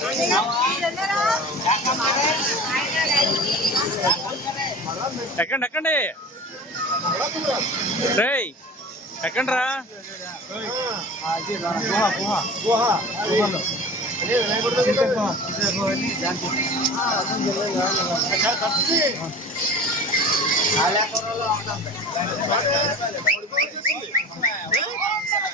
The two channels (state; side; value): normal; both; correlation 0.37